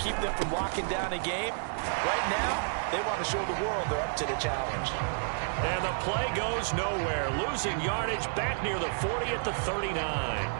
them from locking down a game. Right now, they want to show the world they're up to the challenge. And the play goes nowhere. Losing yardage back near the 40 at the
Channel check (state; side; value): silent; left; digital silence